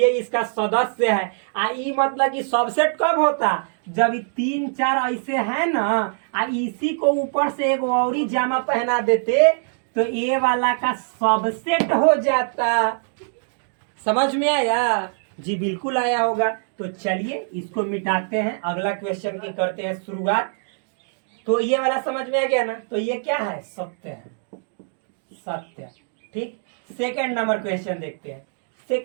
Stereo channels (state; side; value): silent; left; digital silence